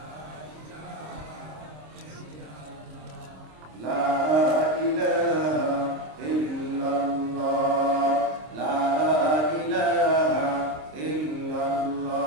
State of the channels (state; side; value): late; left; 26 ms